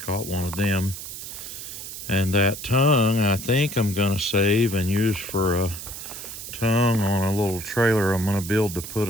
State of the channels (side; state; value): right; noise; hiss, 10 dB below the sound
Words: caught one of them, and that tongue I think I'm going to save and use for a tongue on a little trailer I'm going to build to put